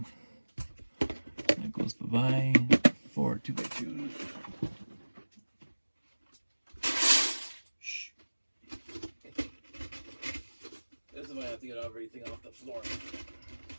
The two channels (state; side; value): inverted; both; correlation -1.00